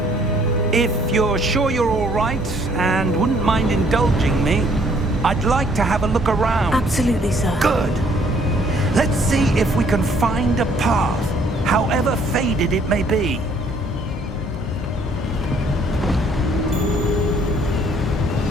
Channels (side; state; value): both; normal; correlation 0.63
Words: If you're sure you're all right, and wouldn't mind indulging me, I'd like to have a look around. Absolutely, sir. Good. Let's see if we can find a path, however faded it may be.